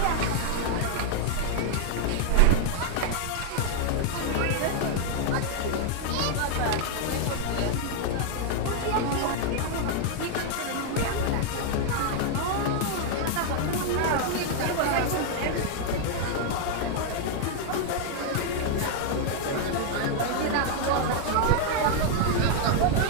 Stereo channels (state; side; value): different; both; correlation 0.00